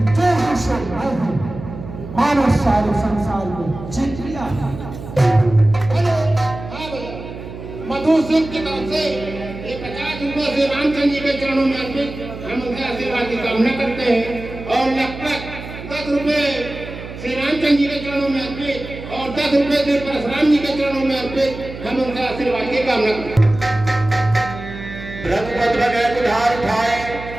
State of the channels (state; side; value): noise; right; hum, 12 dB below the sound